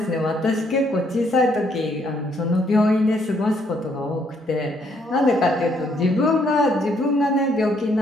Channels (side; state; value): both; normal; correlation 0.70